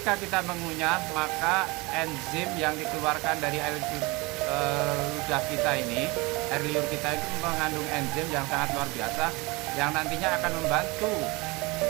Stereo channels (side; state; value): left; quieter; 24.9 dB